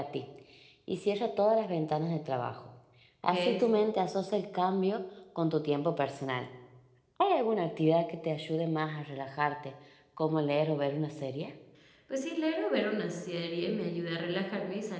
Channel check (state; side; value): identical; both; correlation 1.00